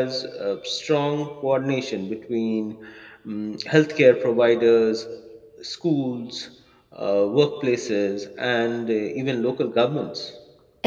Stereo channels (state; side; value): identical; both; correlation 1.00